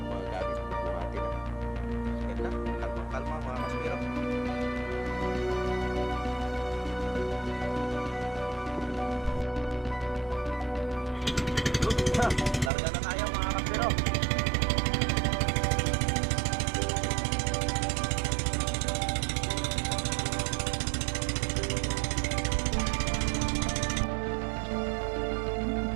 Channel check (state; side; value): drops out; left; at 12.7 s